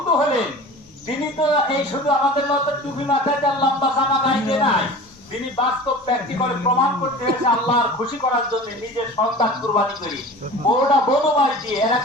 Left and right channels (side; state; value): both; normal; correlation 0.38